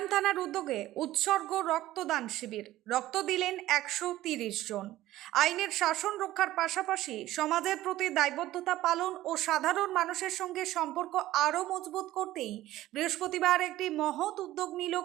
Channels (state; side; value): quieter; left; 15.3 dB